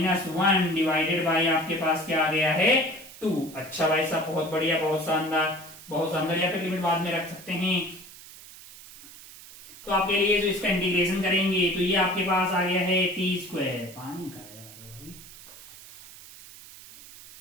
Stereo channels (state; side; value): noise; right; hiss, 18 dB below the sound